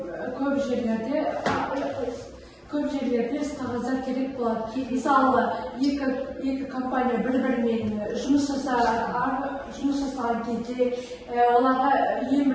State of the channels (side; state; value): both; identical; correlation 1.00